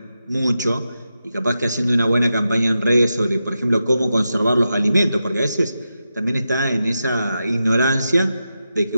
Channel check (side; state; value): both; inverted; correlation -0.89